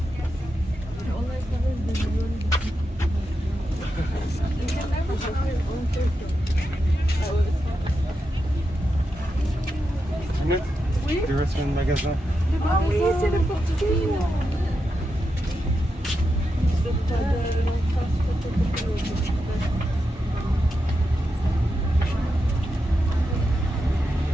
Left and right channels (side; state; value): both; normal; correlation 0.87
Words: Tu restes dans le magasin? Ah oui, c'est le portugais.